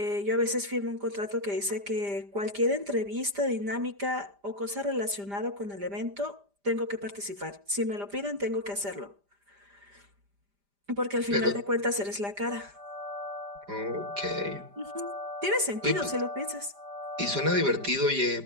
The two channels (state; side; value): late; left; 5.0 ms